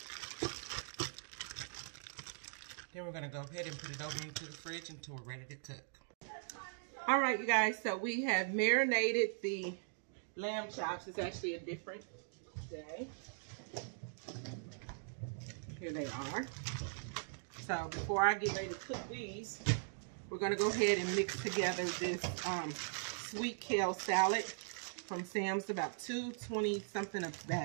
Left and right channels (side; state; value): left; silent; digital silence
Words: Then we're going to go ahead and put it over into the fridge until we're ready to cook. All right, you guys, so we have marinated the lamb chops. It's actually a different day. Here they are. So before I get ready to cook these, we're going to go ahead and mix together this sweet kale salad from Sam's, about $2.20 something a